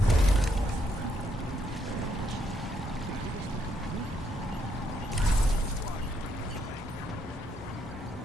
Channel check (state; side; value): normal; both; correlation 0.74